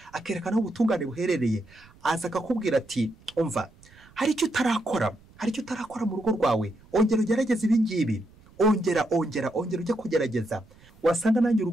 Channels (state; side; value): noise; right; rumble, 26 dB below the sound